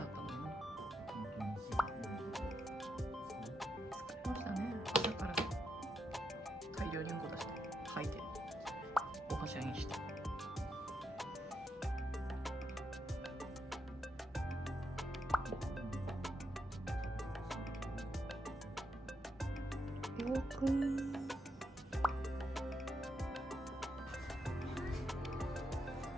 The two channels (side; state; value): both; normal; correlation 0.82